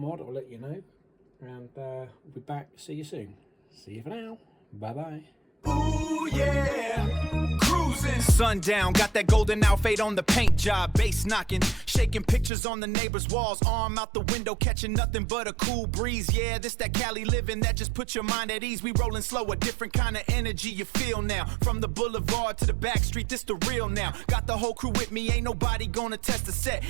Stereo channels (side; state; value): left; drops out; at 12.5 s